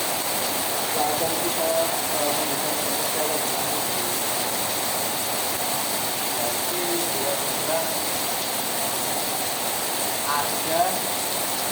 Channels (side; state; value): both; identical; correlation 1.00